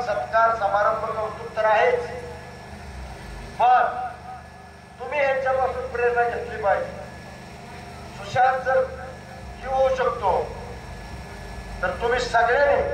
सत्कार समारंभ कौतुक तर आहेच, पण तुम्ही ह्यांच्यापासून प्रेरणा घेतली पाहिजे. सुशांत जर जीव होऊ शकतो तर तुम्ही सगळ्यांनी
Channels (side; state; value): both; identical; correlation 1.00